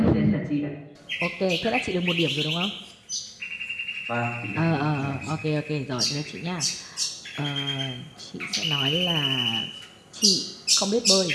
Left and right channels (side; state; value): both; identical; correlation 1.00